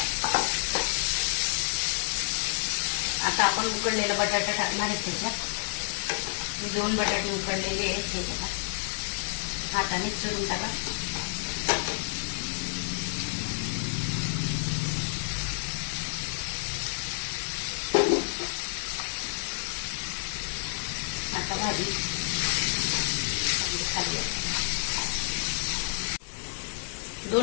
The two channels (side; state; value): right; silent; digital silence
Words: आता आपण उकडलेला बटाटा टाकणार आहे त्याच्यात। मी 2 बटाटे उकडलेले आहेत, हे बघा। हाताने चुरून टाका। आता भाजी